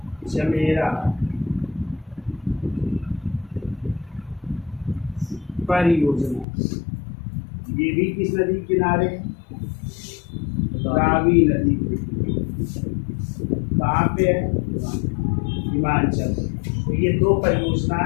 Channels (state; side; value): drops out; right; at 6.5 s